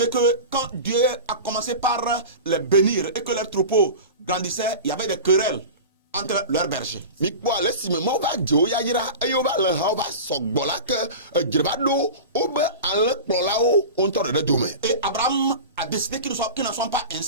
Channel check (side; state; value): both; inverted; correlation -0.31